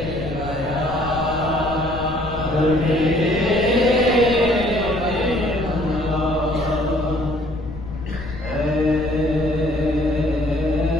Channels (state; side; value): noise; left; rumble, 11 dB below the sound